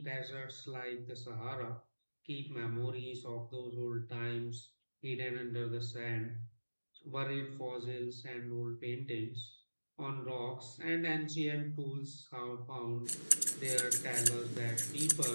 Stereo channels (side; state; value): both; inverted; correlation -1.00